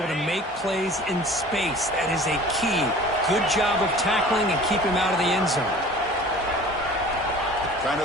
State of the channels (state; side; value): normal; both; correlation 0.44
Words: to make plays in space. That is a key. Good job of tackling and keep him out of the end zone. Trying